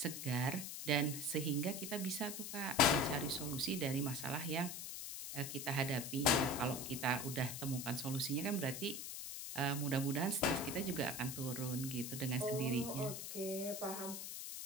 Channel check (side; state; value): left; noise; hiss, 6 dB below the sound